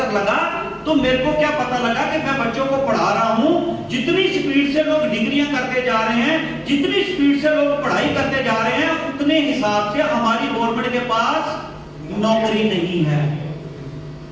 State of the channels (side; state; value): both; identical; correlation 1.00